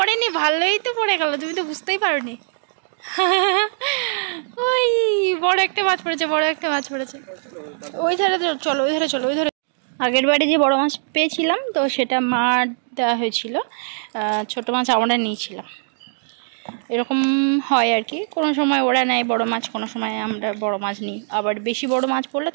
ভালোই তো পড়ে গেল, তুমি তো বুঝতেই পারোনি। ওই বড় একটা মাছ পড়েছে, বড় একটা মাছ পড়েছে। ওই ধারে চলো, ওই ধারে চলো, ওই ধারে। আগের বারে যে বড় মাছ পেয়েছিলাম তো সেটা মার দেওয়া হয়েছিল, ছোট মাছ আমরা নিয়েছিলাম। এরকম হয় আর কি, কোনো সময় ওরা নেয় বড় মাছ, কোনো সময় আমরা বড় মাছ নিই। আবার বেশি বড় মাছ পড়লে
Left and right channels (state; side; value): silent; left; 65 dB below the other